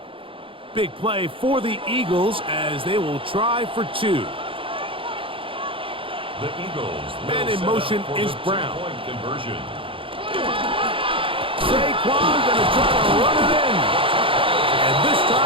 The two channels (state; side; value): late; left; 0.25 ms